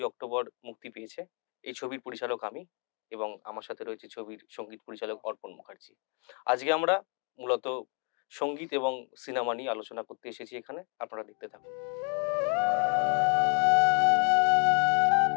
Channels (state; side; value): quieter; right; 38.2 dB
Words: অক্টোবর মুক্তি পেয়েছে। এই ছবির পরিচালক আমি এবং আমার সাথে রয়েছে ছবির সঙ্গীত পরিচালক অর্পণ মুখার্জি। আজকে আমরা মূলত সঙ্গীত এবং সিনেমা নিয়ে আলোচনা করতে এসেছি এখানে। আপনারা দেখতে থাকুন।